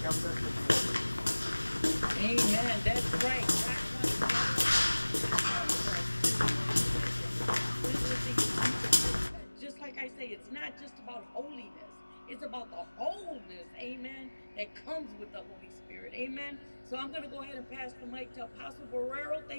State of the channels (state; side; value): inverted; both; correlation -1.00